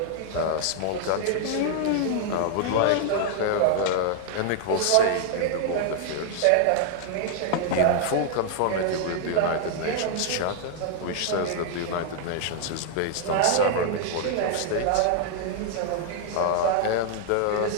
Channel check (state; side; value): different; both; correlation 0.00